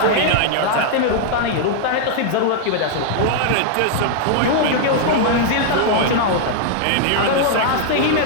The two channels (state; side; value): different; both; correlation -0.01